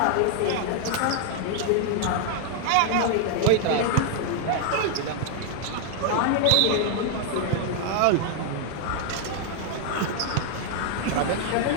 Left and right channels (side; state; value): both; different; correlation 0.00